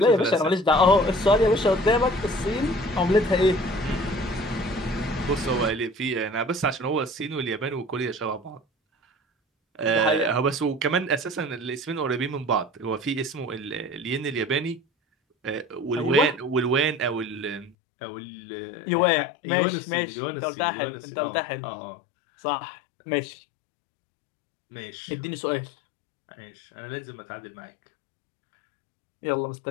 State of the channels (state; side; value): drops out; right; at 17.8 s